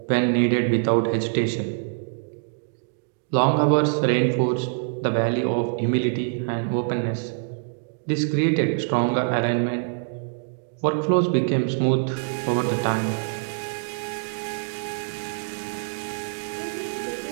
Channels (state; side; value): silent; left; digital silence